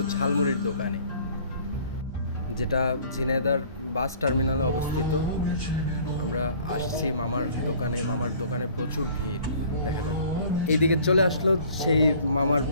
ঝালমুড়ির দোকানে, যেটা ঝিনাইদহর বাস টার্মিনালে অবস্থিত। আমরা আসছি মামার দোকানে প্রচুর ভিড় দেখা যাচ্ছে। এইদিকে চলে আসলো সেই মামার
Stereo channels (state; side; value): inverted; both; correlation -0.52